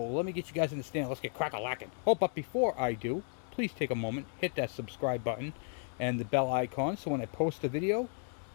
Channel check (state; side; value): silent; right; 55 dB below the other